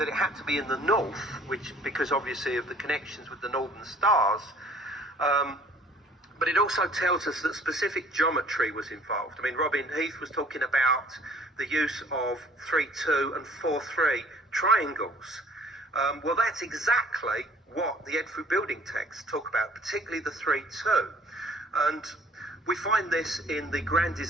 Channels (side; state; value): both; normal; correlation 0.55